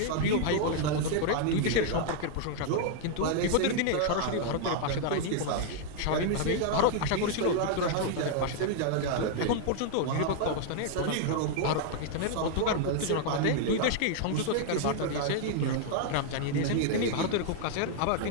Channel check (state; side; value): different; both; correlation 0.00